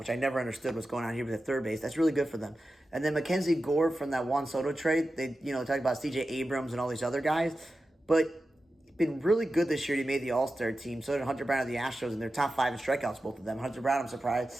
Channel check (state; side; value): normal; both; correlation 0.93